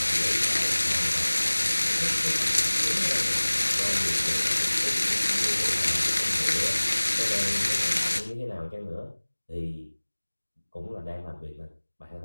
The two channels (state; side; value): inverted; both; correlation -1.00